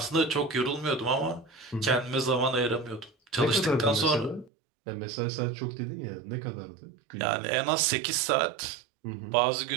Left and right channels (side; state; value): left; drops out; at 4.5 s